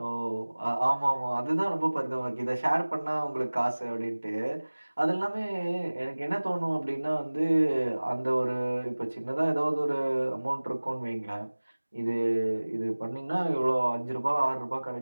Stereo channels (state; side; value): inverted; both; correlation -1.00